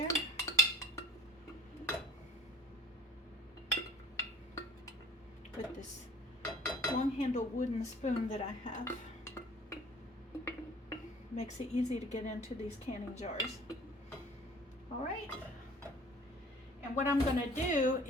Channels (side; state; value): both; normal; correlation 0.51